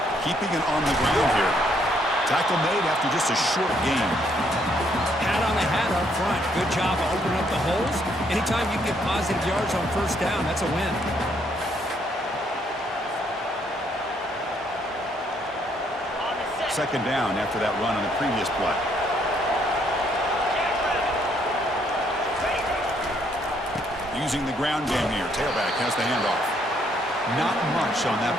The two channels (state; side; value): normal; both; correlation 0.70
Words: Keeping it on the ground here. Tackle made after just a short gain. Hat on the hat up front. Good job of opening up the holes. Anytime you get positive yards on first down, that's a win. Second down after that run on the previous play. using the ground game here. Tailback has the handoff. Not much on that